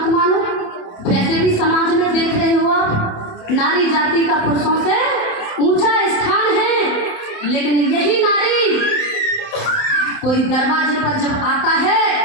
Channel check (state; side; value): late; right; 27 ms